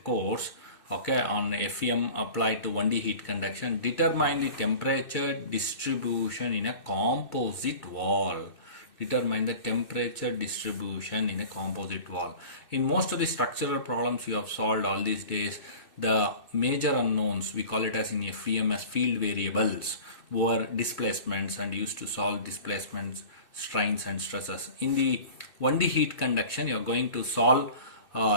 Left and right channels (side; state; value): right; late; 2.6 ms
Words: course. Okay, on FEM applied to 1D heat conduction, determine the temperature distribution in a composite wall. Determine the temperature distribution in a composite wall. In most of the structural problems you have solved all these days, the major unknowns, we call it as in FEM as field variables, were displacements and used to solve displacements, strains and stresses. In the 1D heat conduction, you are going to solve